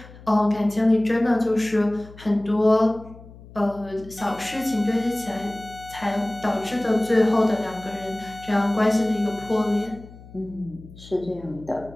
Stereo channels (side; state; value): left; noise; hum, 19 dB below the sound